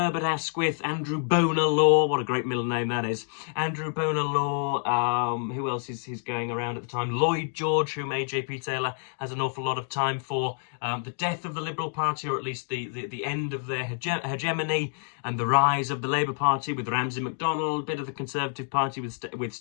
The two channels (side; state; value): right; silent; digital silence